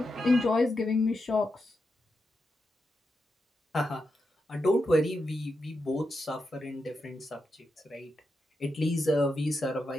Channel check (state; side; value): normal; both; correlation 0.87